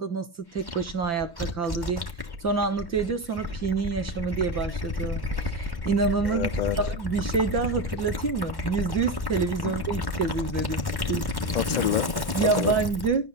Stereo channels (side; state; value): right; late; 1.1 ms